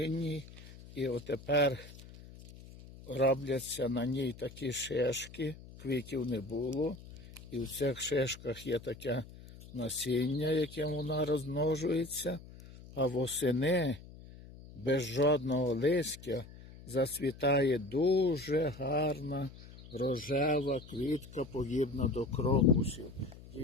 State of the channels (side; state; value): left; noise; hum, 18 dB below the sound